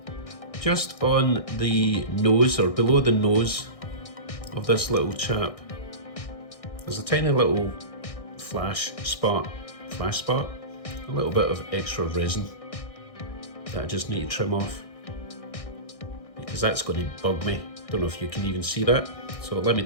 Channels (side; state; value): right; late; 1.6 ms